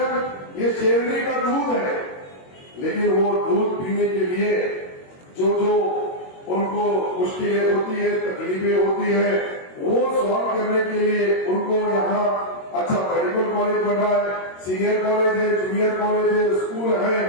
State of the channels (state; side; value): late; right; 22 ms